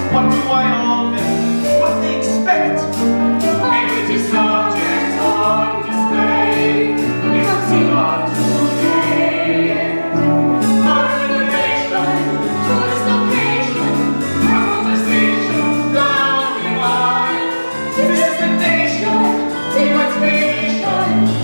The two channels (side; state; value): both; inverted; correlation -1.00